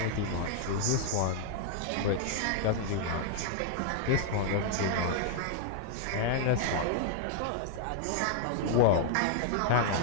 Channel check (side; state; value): both; different; correlation 0.00